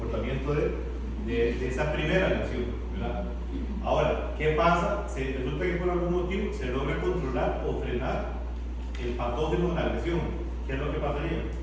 de esa primera reacción, ¿verdad? Ahora, ¿qué pasa? Resulta que por algún motivo se logra controlar o frenar el patógeno de la agresión. ¿Qué es lo que pasaría?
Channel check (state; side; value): identical; both; correlation 1.00